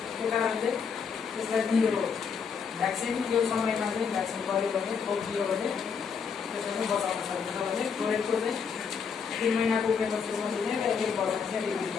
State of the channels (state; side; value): quieter; right; 6.2 dB